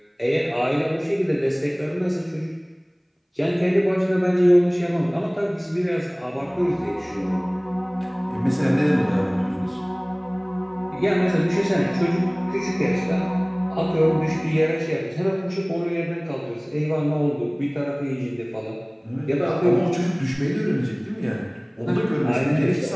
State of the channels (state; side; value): identical; both; correlation 1.00